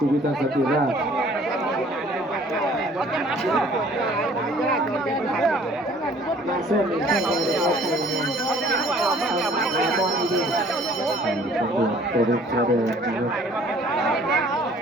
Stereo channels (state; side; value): normal; both; correlation 0.55